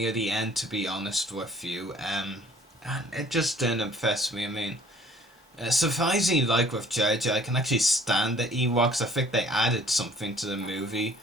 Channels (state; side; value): normal; both; correlation 0.55